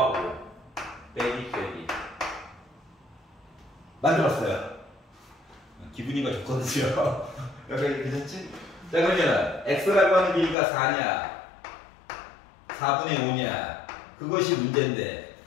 5 빼기 만들었어요. 기분이가 좋거든요. 여기 괜찮지? 자 그러면 x라고 하는 길이가 4냐 4분의 5냐 그것이 문제인데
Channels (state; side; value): drops out; right; at 10.6 s